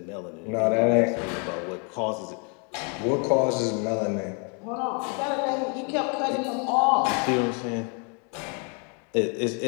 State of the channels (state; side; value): quieter; right; 37.1 dB